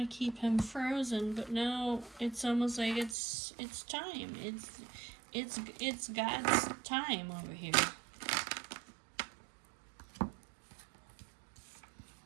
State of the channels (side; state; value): left; drops out; at 3.2 s